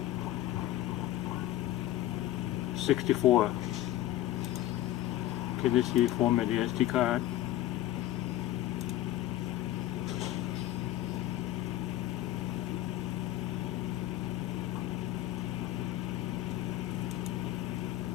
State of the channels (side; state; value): right; quieter; 14.1 dB